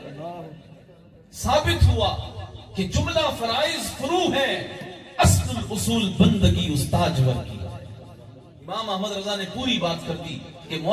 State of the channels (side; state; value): both; identical; correlation 1.00